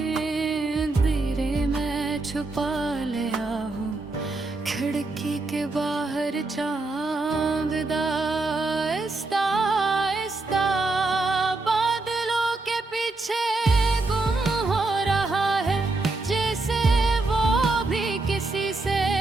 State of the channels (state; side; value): quieter; left; 3.3 dB